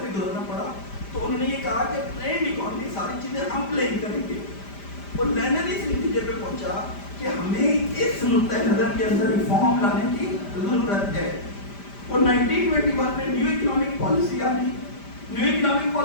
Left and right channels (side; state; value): right; late; 5.0 ms